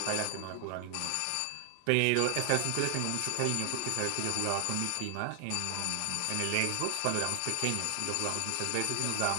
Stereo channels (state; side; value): different; both; correlation 0.00